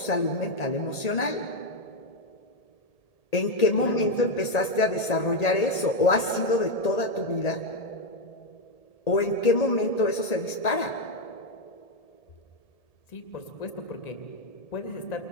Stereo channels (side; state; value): right; late; 1.8 ms